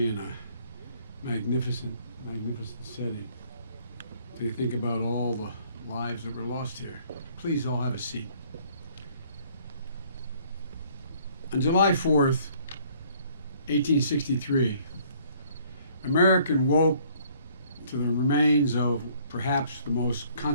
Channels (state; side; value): inverted; both; correlation -0.60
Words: in a magnificent setting. To think about all the lives that were lost here. Please all have a seat. On July 4th, 1863, America woke to the remains of perhaps the most